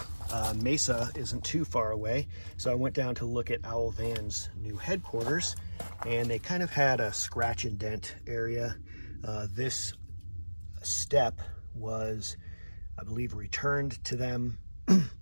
Mesa isn't too far away. So I went down to look at Owl Van's new headquarters, and they kind of had a scratch and dent area. This step was, I believe, returned to them.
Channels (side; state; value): both; inverted; correlation -1.00